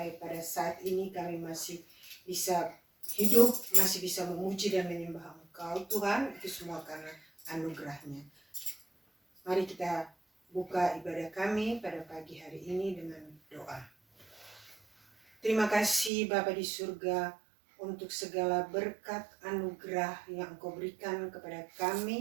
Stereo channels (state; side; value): drops out; left; at 16.1 s